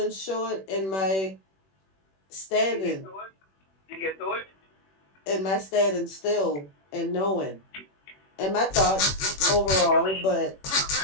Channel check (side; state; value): right; late; 21 ms